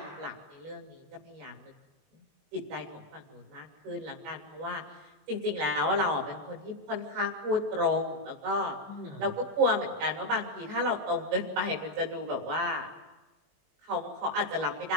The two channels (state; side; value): late; left; 21 ms